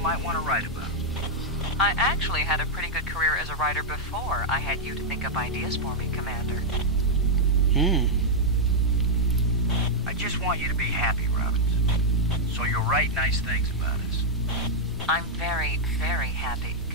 want to write about. I actually had a pretty good career as a writer before I had you to think up ideas for me, Commander. I just want you to be happy, Robbins. So you'll write nice things about us. I'm very, very happy,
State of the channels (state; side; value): normal; both; correlation -0.04